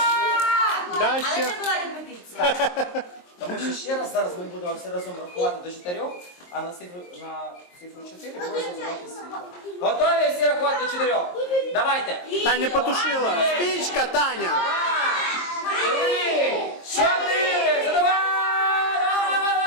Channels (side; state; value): right; late; 23 ms